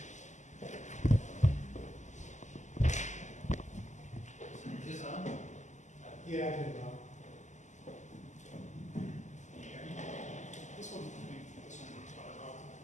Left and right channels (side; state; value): right; late; 0.34 ms